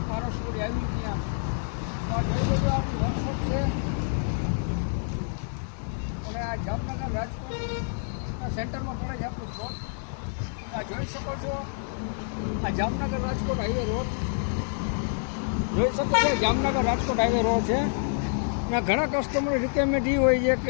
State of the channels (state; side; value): silent; right; digital silence